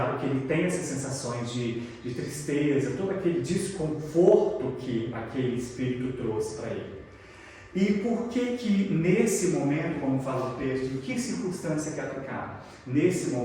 que ele tem essas sensações de tristeza, todo aquele desconforto que aquele espírito trouxe para ele. E por que nesse momento, como fala o texto, em que circunstância que aplicar? Nesse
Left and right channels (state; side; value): identical; both; correlation 1.00